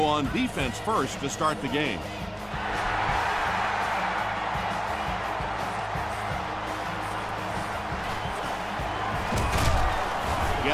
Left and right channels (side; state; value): both; identical; correlation 1.00